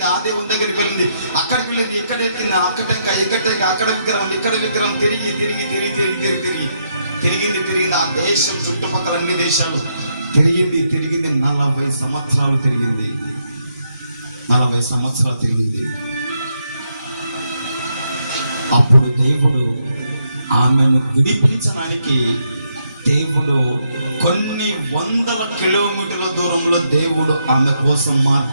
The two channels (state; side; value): inverted; both; correlation -0.78